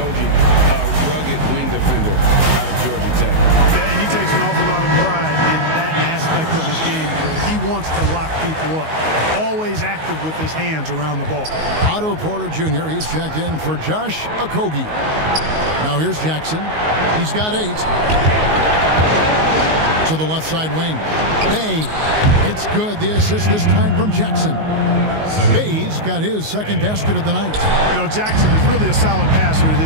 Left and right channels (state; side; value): late; left; 19 ms